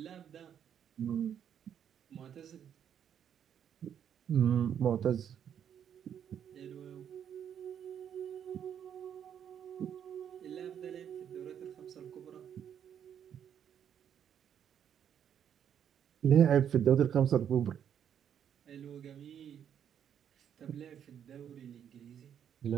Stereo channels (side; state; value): left; quieter; 8.9 dB